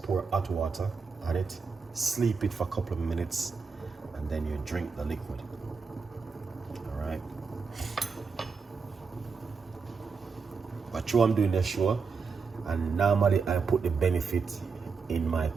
pour hot water on it, sleep it for a couple of minutes, and then you drink the liquid. All right. But I'm doing the show, and normally I put the benefit in my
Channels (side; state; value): left; quieter; 5.1 dB